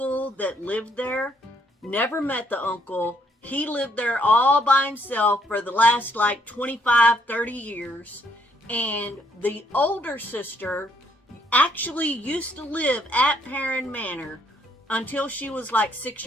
that lived there. Never met the uncle. He lived there all by himself for the last 25, 30 years. And the older sister actually used to live at Perrin Manor until she was 6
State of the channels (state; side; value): normal; both; correlation 0.70